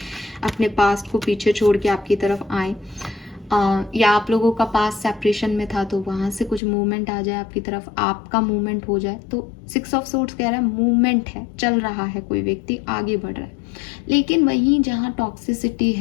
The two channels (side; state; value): right; drops out; at 6.6 s